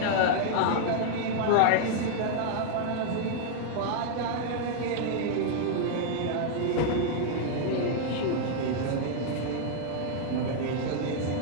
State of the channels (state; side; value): different; both; correlation 0.00